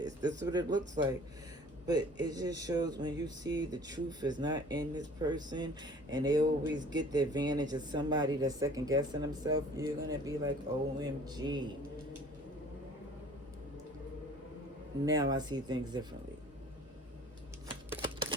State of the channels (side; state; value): both; normal; correlation 0.50